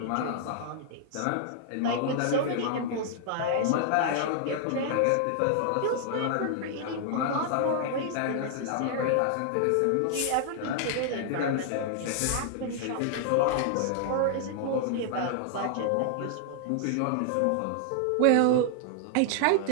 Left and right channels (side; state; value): both; different; correlation 0.00